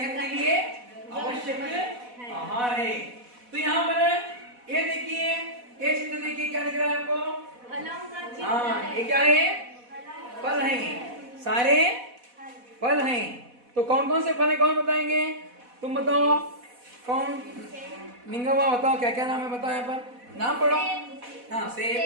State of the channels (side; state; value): left; late; 4.1 ms